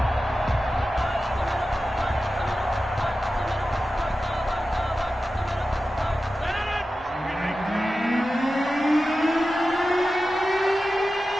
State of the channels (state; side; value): normal; both; correlation 0.93